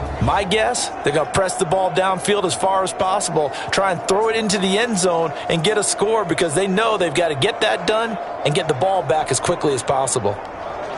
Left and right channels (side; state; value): both; identical; correlation 1.00